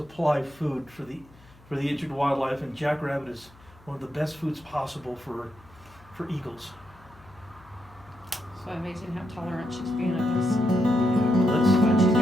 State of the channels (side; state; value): left; noise; hum, 26 dB below the sound